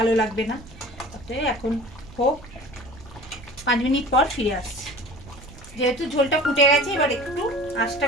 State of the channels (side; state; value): right; noise; rumble, 19 dB below the sound